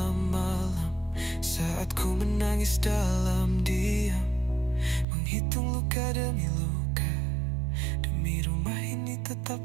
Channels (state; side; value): drops out; left; at 5.1 s